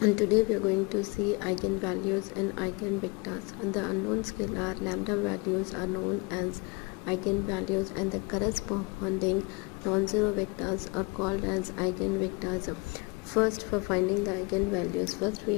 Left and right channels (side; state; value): right; quieter; 29.3 dB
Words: today we are going to see eigenvalues and eigenvectors. And the unknown scalar lambda values are known as eigenvalues, and the corresponding non-zero vectors are called as eigenvectors. First, for finding the eigenvalues, first